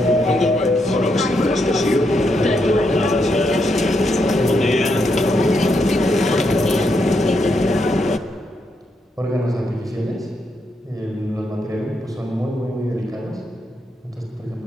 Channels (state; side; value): normal; both; correlation 0.80